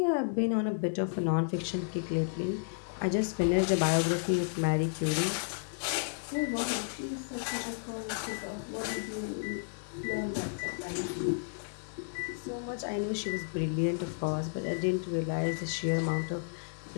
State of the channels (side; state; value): right; silent; digital silence